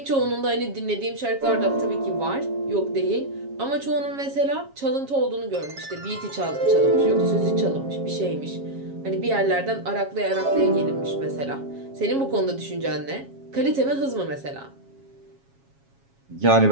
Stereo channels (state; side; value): late; left; 7.3 ms